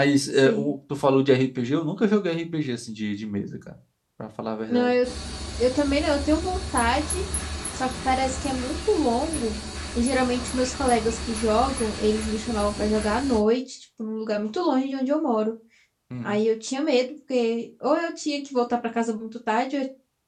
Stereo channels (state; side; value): identical; both; correlation 1.00